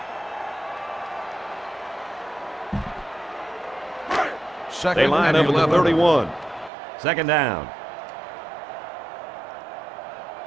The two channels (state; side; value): drops out; left; at 6.7 s